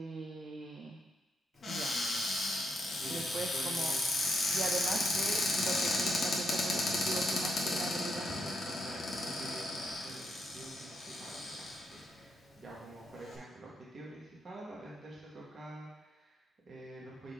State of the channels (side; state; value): both; normal; correlation 0.79